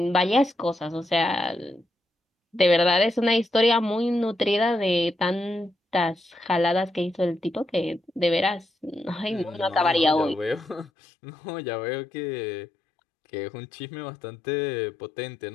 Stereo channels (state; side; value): drops out; right; at 10.9 s